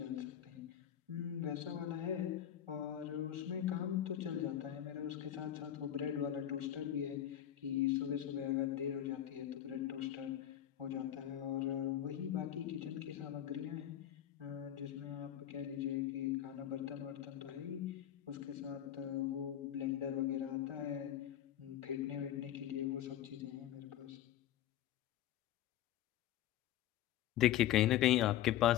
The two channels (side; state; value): right; quieter; 11.5 dB